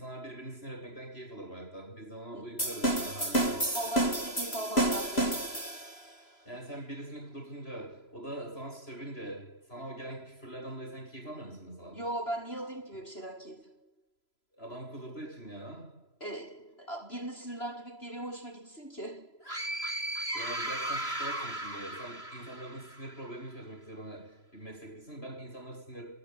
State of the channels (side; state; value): right; late; 3.0 ms